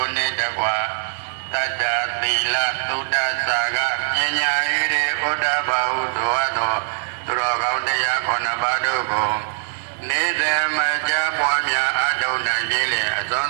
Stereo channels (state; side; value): silent; left; digital silence